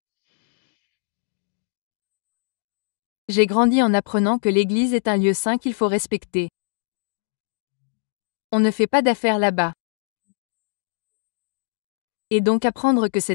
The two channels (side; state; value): right; silent; digital silence